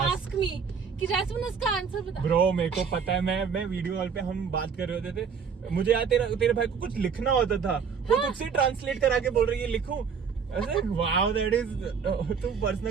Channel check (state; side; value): quieter; left; 6.3 dB